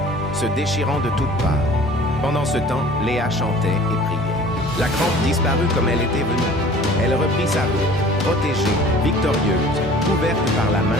se déchirant de toutes parts. Pendant ce temps, Léa chantait et priait. La crampe disparut comme elle était venue. Elle reprit sa route, protégée, victorieuse, couverte par la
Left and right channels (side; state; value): both; normal; correlation 0.47